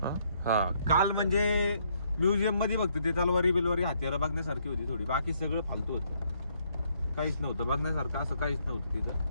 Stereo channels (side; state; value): both; inverted; correlation -0.71